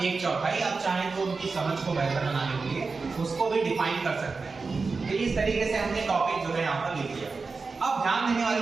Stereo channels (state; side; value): quieter; left; 4.3 dB